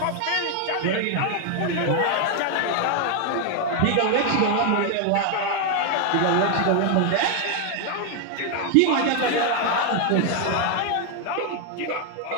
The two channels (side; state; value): both; different; correlation 0.00